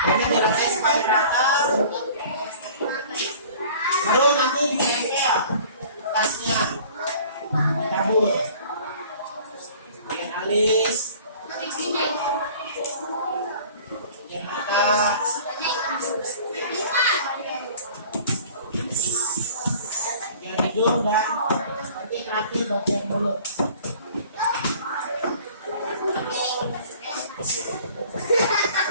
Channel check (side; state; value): both; inverted; correlation -0.48